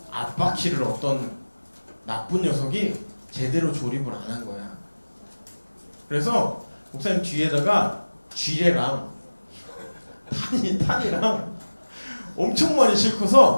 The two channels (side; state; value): both; inverted; correlation -1.00